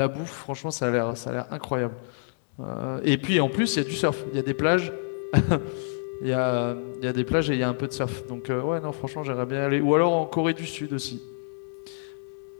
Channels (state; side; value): silent; right; digital silence